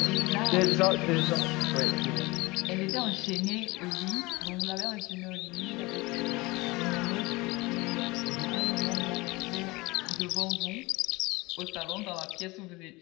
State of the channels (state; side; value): quieter; right; 23.0 dB